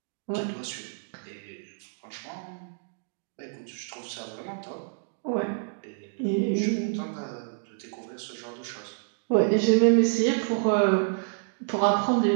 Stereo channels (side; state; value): left; silent; digital silence